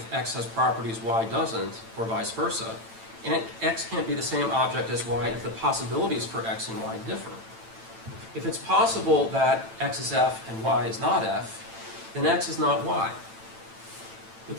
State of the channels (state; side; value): late; left; 8.9 ms